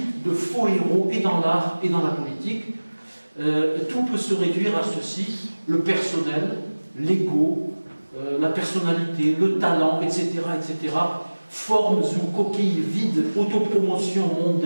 de faux héros et dans l'art et dans la politique. Tout peut se réduire à ceci: le personnel, l'ego, la personnalité, le talent, etc., etc., formes ou coquilles vides, autopromotion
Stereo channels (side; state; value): both; inverted; correlation -1.00